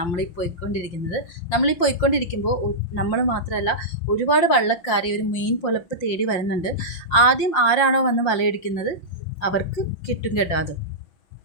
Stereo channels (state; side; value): late; right; 5.7 ms